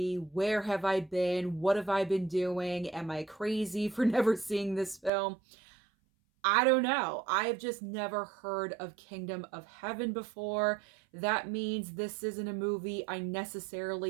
Where have I been? What have I been doing? Am I crazy for never seeing this film? I don't know. I have just never heard of Kingdom of Heaven before. That means this isn't a movie I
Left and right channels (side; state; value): left; drops out; at 5.1 s